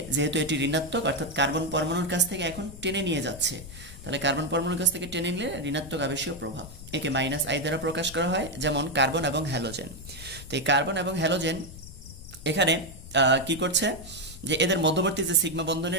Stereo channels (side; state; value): left; noise; rumble, 15 dB below the sound